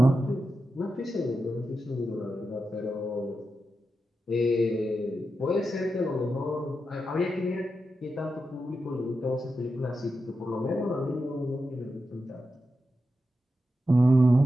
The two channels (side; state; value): both; normal; correlation 0.89